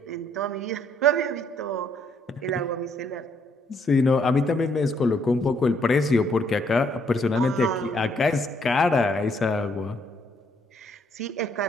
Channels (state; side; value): normal; both; correlation 0.69